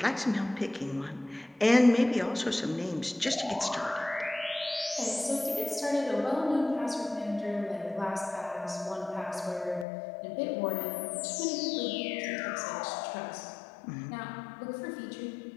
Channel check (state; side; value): drops out; right; at 9.9 s